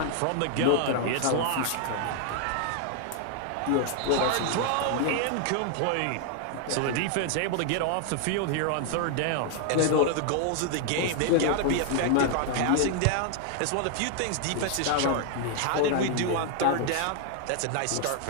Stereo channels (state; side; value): different; both; correlation 0.00